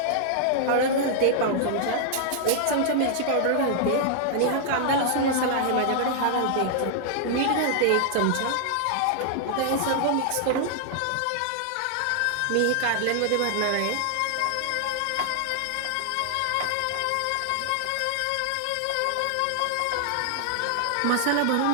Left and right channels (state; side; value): different; both; correlation 0.00